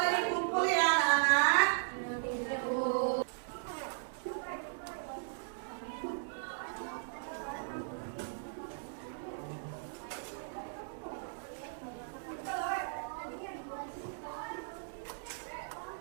dikumpul ya anak-anak.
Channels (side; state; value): left; silent; digital silence